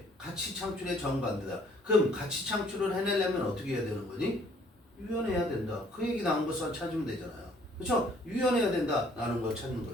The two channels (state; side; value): normal; both; correlation 0.60